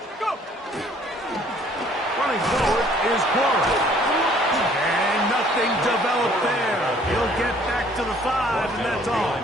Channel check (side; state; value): both; normal; correlation 0.59